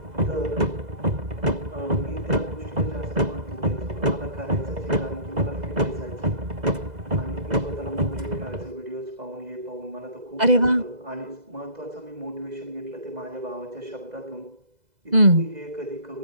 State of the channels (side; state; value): left; late; 2.0 ms